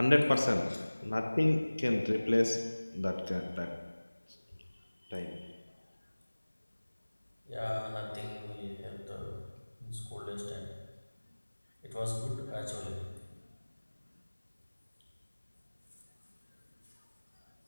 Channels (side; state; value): both; inverted; correlation -1.00